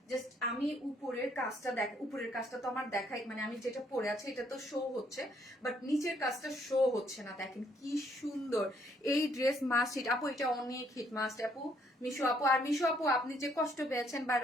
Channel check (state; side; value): normal; both; correlation 0.68